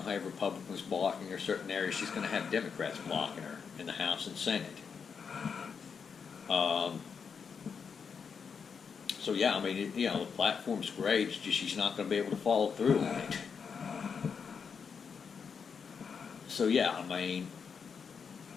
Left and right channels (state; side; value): quieter; right; 6.2 dB